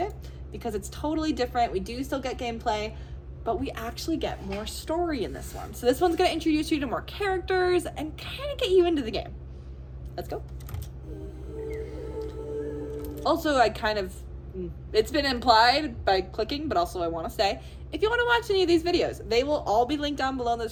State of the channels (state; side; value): identical; both; correlation 1.00